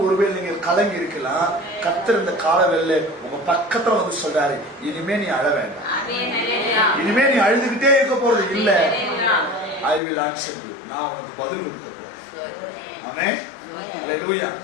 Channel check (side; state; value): right; drops out; at 10.0 s